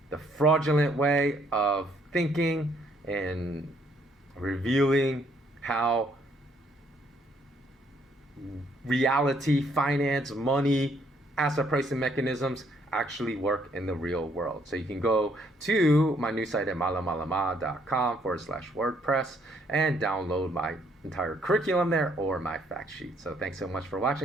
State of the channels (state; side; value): normal; both; correlation 0.68